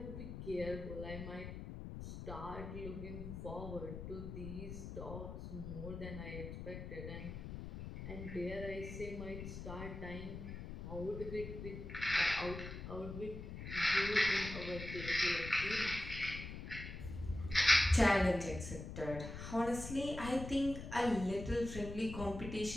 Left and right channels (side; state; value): left; noise; rumble, 8 dB below the sound